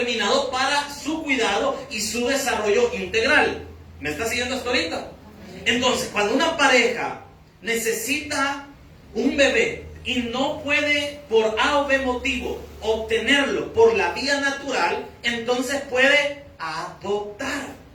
para su cuidado y su desarrollo integral. ¿Me está siguiendo hasta ahorita? Entonces, cuando una pareja necesita un bebé y no puede por A o B motivo obtenerlo por la vía natural, entonces puede adoptar.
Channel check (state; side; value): identical; both; correlation 1.00